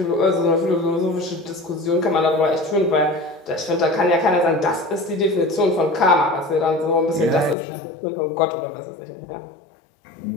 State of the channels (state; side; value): drops out; right; at 7.6 s